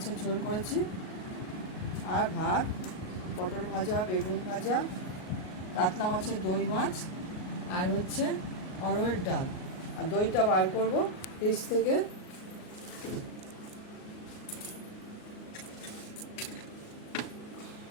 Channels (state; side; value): late; right; 38 ms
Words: ঝোল করেছি, আর ভাত, পটল ভাজা, বেগুন ভাজা, কাতলা মাছের দই মাছ, আর হচ্ছে অরহরের ডাল। আর দইটা বার করব ফ্রিজ থেকে।